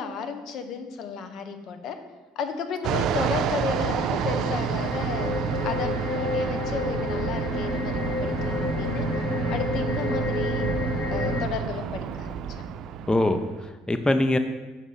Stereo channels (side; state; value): both; normal; correlation 0.57